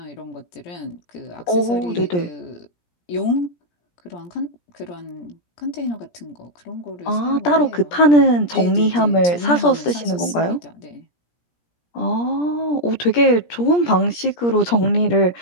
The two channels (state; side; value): late; right; 17 ms